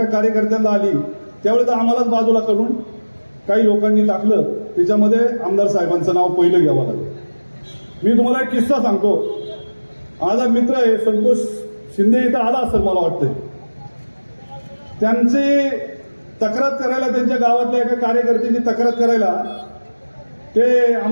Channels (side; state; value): both; inverted; correlation -1.00